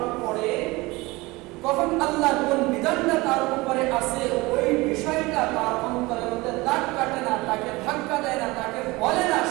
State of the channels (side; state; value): left; quieter; 22.2 dB